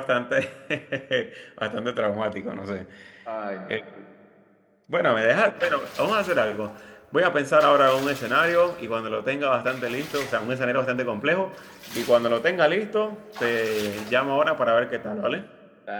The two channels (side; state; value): both; identical; correlation 1.00